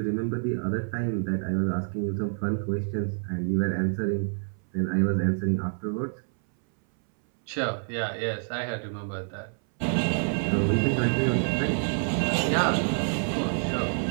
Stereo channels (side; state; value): left; silent; 60 dB below the other